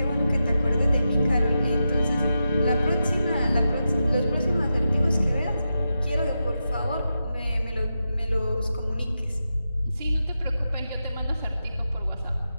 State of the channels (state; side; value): inverted; both; correlation -0.89